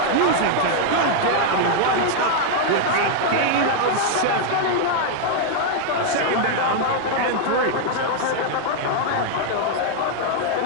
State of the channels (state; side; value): different; both; correlation 0.00